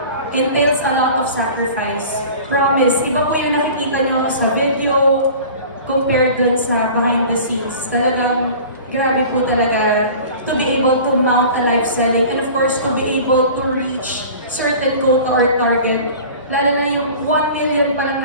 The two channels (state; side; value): inverted; both; correlation -0.41